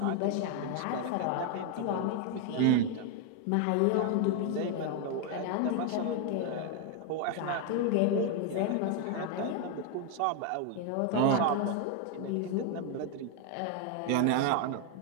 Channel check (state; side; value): different; both; correlation 0.01